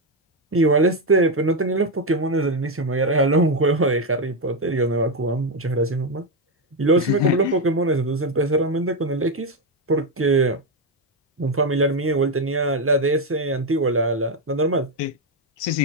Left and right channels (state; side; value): normal; both; correlation 0.07